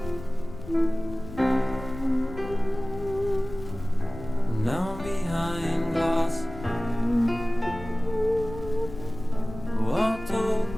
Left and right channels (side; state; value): left; noise; rumble, 13 dB below the sound